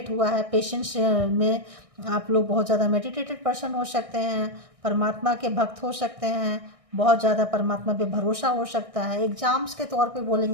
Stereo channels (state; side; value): late; left; 1.6 ms